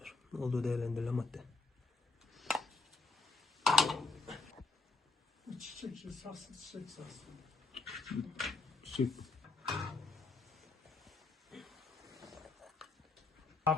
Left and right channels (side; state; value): right; quieter; 3.7 dB